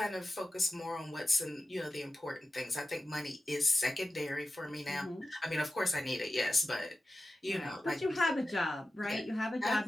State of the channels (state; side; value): normal; both; correlation 0.93